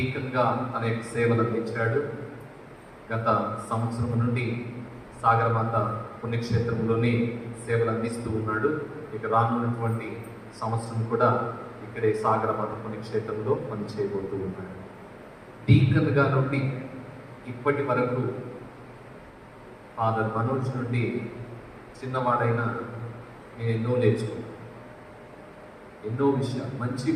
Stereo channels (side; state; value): both; identical; correlation 1.00